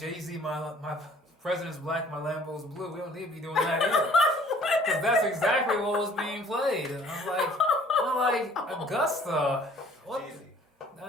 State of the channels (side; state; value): both; normal; correlation 0.55